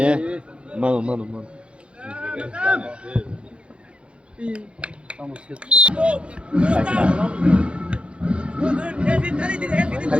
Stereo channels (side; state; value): left; late; 0.058 ms